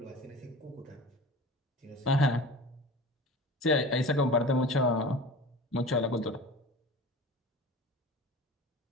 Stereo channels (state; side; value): normal; both; correlation 0.36